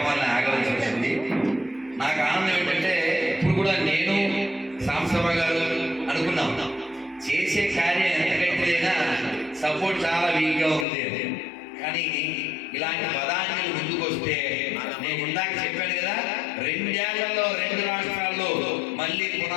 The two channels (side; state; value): right; drops out; at 10.9 s